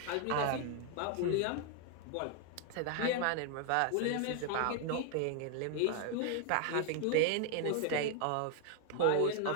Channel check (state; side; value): different; both; correlation 0.00